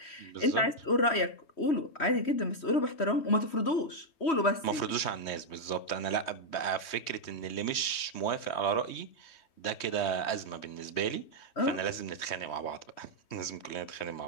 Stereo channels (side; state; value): right; late; 3.2 ms